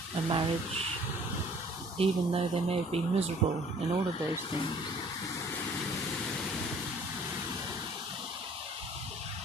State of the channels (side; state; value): both; normal; correlation 0.54